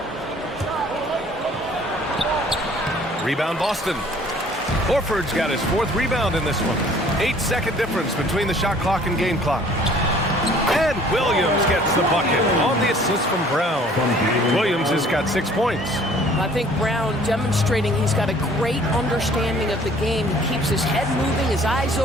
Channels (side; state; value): both; normal; correlation 0.54